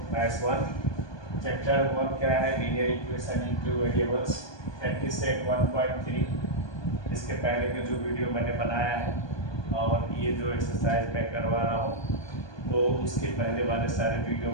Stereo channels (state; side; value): late; right; 1.2 ms